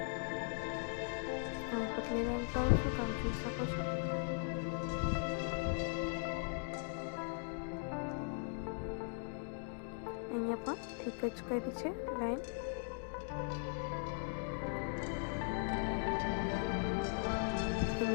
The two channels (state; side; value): silent; right; 52 dB below the other